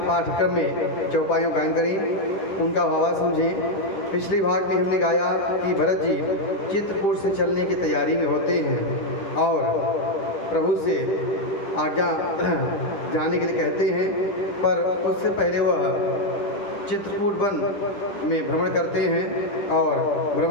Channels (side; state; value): right; late; 10 ms